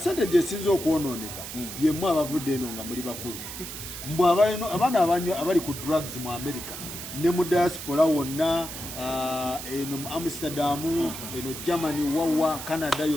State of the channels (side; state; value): right; noise; hiss, 9 dB below the sound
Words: esinza okwonooneka yemmwe abavudde eno nga muli bakulu mbw abaana abali ku drugs mu America ne mu diaspora wonna eno mu Amsterdam eno Germany wawa Canada